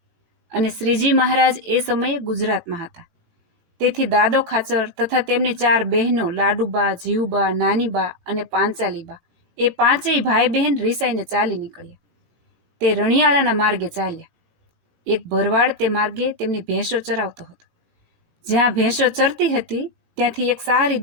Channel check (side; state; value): left; late; 17 ms